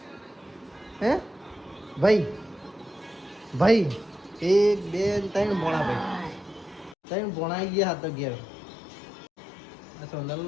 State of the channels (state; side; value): drops out; right; at 7.0 s